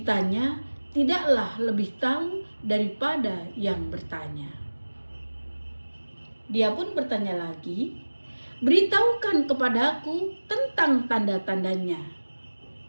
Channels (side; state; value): both; inverted; correlation -1.00